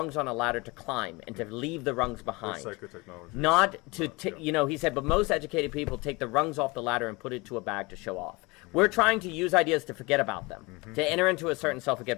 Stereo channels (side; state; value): right; quieter; 25.1 dB